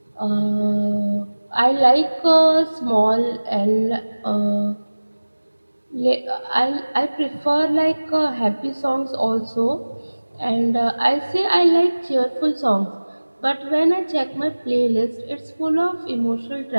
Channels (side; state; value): both; inverted; correlation -1.00